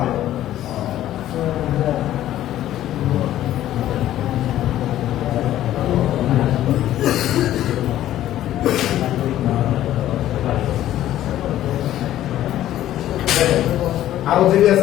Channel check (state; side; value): quieter; right; 13.0 dB